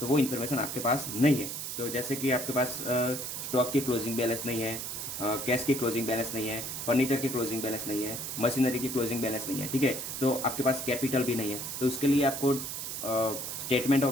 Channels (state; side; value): noise; right; hiss, 5 dB below the sound